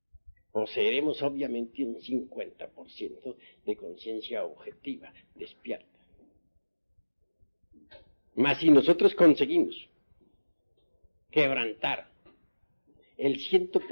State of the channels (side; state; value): both; inverted; correlation -1.00